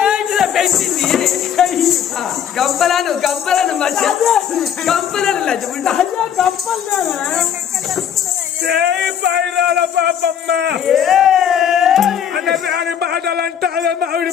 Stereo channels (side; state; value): right; quieter; 8.8 dB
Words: పెంచింది గంపలను పాపమ్మ అన్నదాని బాధలంటే మావిడి